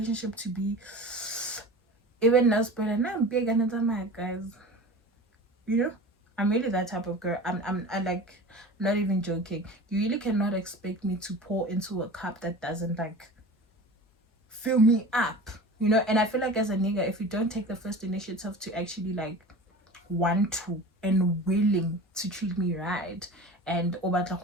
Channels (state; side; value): normal; both; correlation 0.36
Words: to be even nice, but I'm big and my guys. You know, I'm really that type of girl. I like, not even joking. You really cannot expect me to pour into a cup that doesn't like fill me up. You know, and I feel like as a nigga, if you don't take the first initiative to actually like want to and willing to treat me right, and